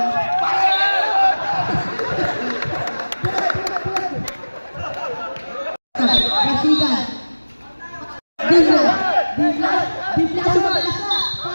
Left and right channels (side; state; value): both; inverted; correlation -1.00